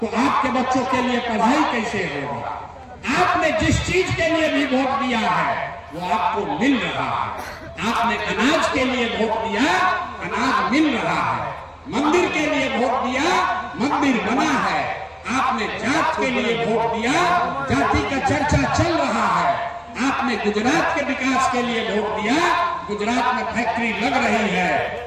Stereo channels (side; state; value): both; identical; correlation 1.00